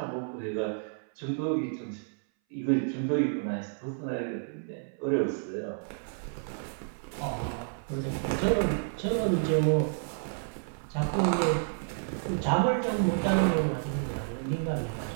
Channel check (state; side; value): silent; left; 58 dB below the other